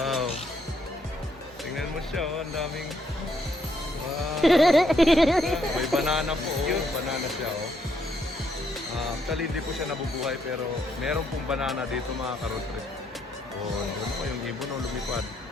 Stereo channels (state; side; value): normal; both; correlation 0.73